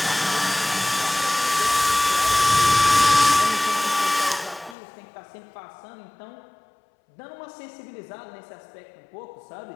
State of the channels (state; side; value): drops out; right; at 4.8 s